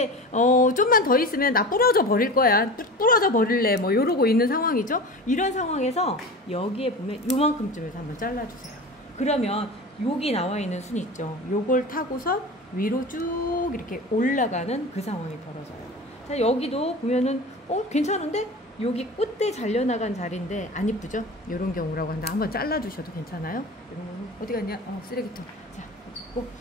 좀만 더 있으면 나 부러져 버릴 거야, 부러져 버릴래, 뭐 이러고 있는 상황이죠. 이런 상황에서 여기에 보면 요만큼쯤에서 한번 잘라주세요. 그러면 여기 나와 있는 순 있죠. 요걸 타고서 위로 쭉 이렇게 올라가는 그 상황이 벌어져요. 자, 여기도 보면은 괜찮은데? 여기 꽃대 잘려나간 자리인데 안 이쁘죠? 이런 경우라고 한다. 한번 잘라주셔도 괜찮아요. 이런 거는 어디 갔냐? 쓰레기통. 자, 꼭.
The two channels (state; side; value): normal; both; correlation 0.32